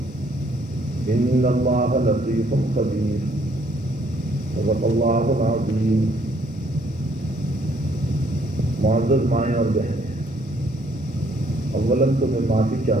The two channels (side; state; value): both; normal; correlation 0.65